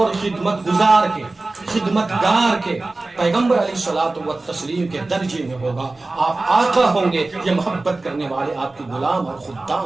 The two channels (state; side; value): quieter; left; 3.2 dB